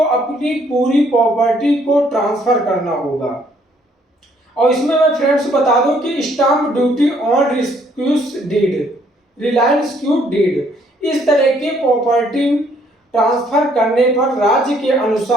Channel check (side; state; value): both; normal; correlation 0.66